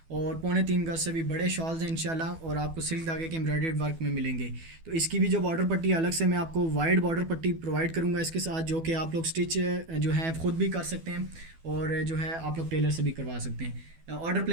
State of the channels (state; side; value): late; left; 12 ms